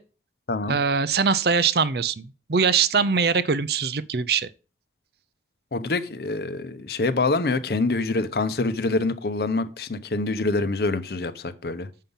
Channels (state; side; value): normal; both; correlation 0.16